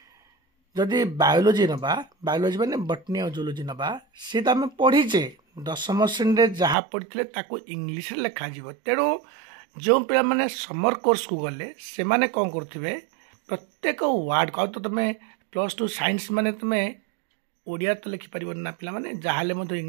जदि बायोलोजी नबा बायोलोजी माने बटनी और जूलोजी नबा सी तो आम पढ़ीचे 10वीं श्रेणी जहाँ पढ़ी ताको इंग्लिश लिखा जीव। तेणु जो पिला माने समर कोर्स को गले से माने कौन करथिबे प्रत्येक वार्ड को तो तुम +2 साइंस माने तुम ओडिया तो लिखि परिबन ना पिला माने जहाले मधे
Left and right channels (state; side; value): drops out; left; at 6.8 s